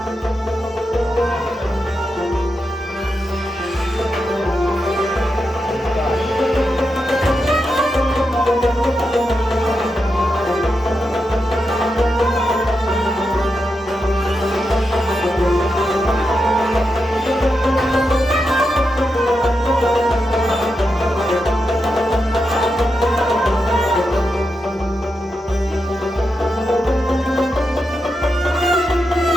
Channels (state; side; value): normal; both; correlation 0.87